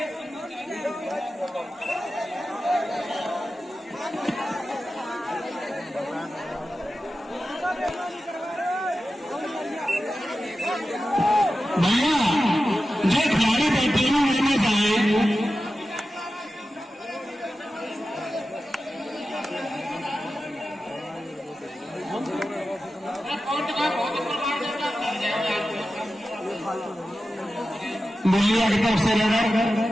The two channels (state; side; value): normal; both; correlation 0.93